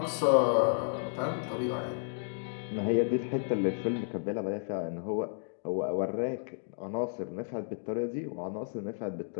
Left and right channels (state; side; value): silent; right; digital silence